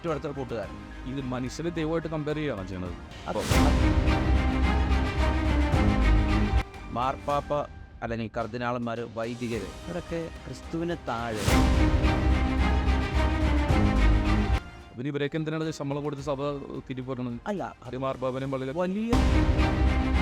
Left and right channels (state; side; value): identical; both; correlation 1.00